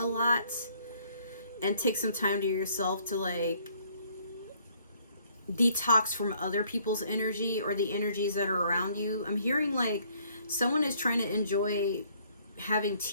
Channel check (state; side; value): inverted; both; correlation -0.63